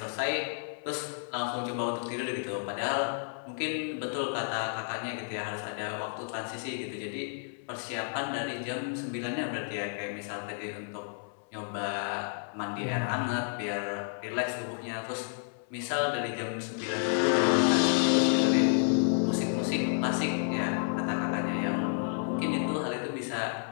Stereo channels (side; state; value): right; silent; 57 dB below the other